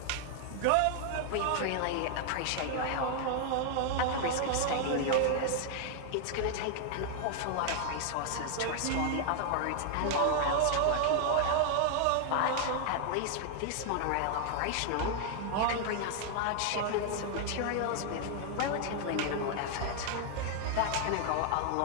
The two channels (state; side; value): different; both; correlation 0.00